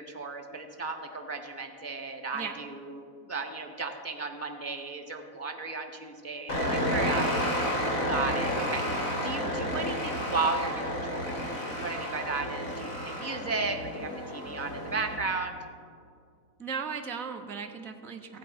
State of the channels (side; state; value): right; late; 4.0 ms